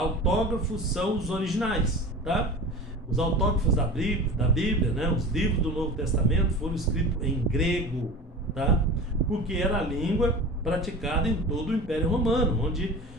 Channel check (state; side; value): normal; both; correlation 0.36